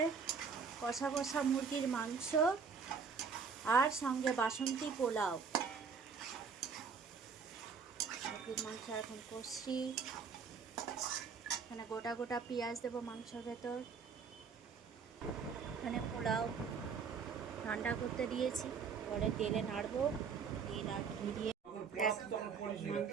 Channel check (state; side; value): quieter; left; 5.8 dB